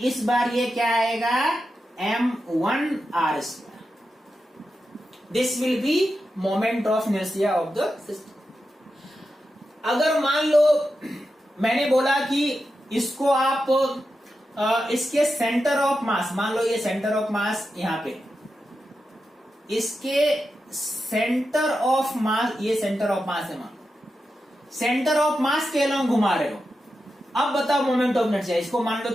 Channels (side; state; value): both; normal; correlation 0.89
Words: बार ये क्या आएगा M1 R square. This will B moment of inertia of the system. अगर मान लो मैंने बोला कि इसको आप इसके सेंटर ऑफ मास, मान लो ये सेंटर ऑफ मास यहां पे, इसके सेंटर ऑफ मास, ये सेंटर ऑफ मास है, मान सेंटर ऑफ मास के अलोंग घुमा रहे हो। अब बताओ मोमेंट ऑफ इनर्शिया, इसको मान लो